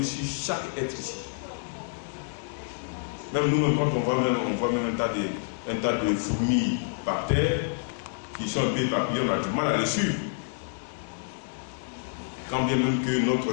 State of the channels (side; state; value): right; silent; digital silence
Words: sur chaque être ici. Même nous-mêmes, quand on voit même un tas de fourmis par terre, qui sont un peu éparpillées, on a du mal à les suivre. Quand bien même que